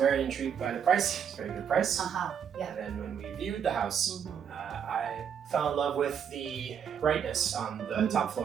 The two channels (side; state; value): left; quieter; 8.0 dB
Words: intrigued by the price. It's a very good price. Yeah. And then when we viewed the house, I fell in love with the brightness on the top